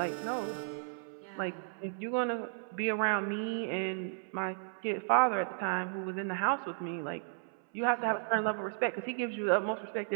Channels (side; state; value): left; silent; 55 dB below the other